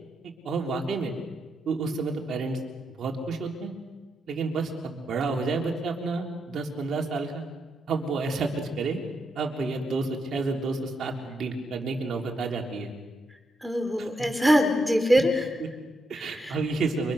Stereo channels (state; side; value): normal; both; correlation 0.81